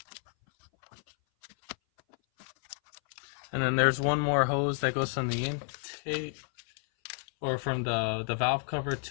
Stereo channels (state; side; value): silent; right; 57 dB below the other